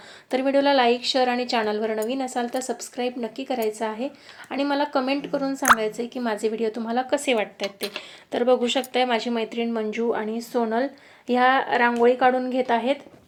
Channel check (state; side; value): identical; both; correlation 1.00